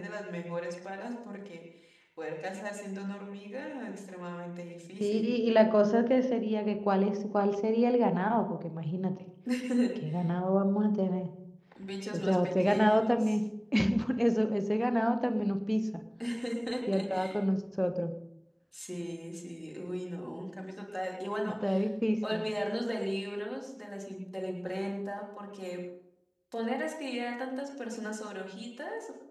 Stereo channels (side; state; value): both; identical; correlation 1.00